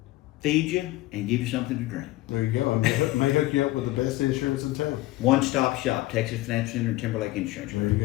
Feed you and give you something to drink. There you go. I may hook you up with the best insurance in town. One-stop shop, Texas Financial Center and Timberlake Insurance. There you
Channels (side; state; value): right; quieter; 18.0 dB